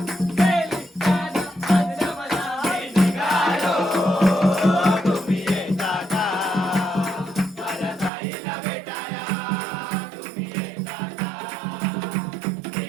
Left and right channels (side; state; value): left; drops out; at 8.1 s